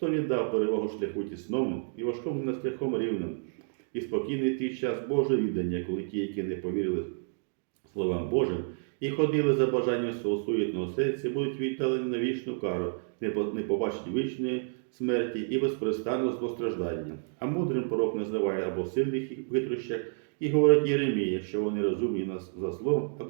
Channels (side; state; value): left; silent; digital silence